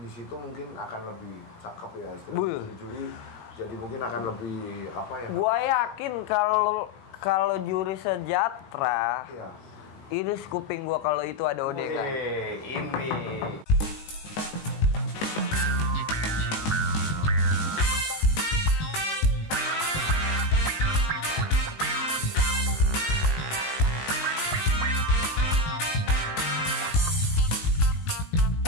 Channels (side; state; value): right; late; 19 ms